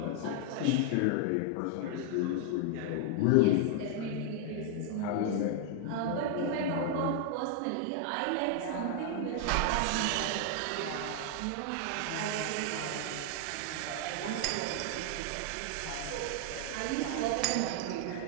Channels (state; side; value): different; both; correlation 0.00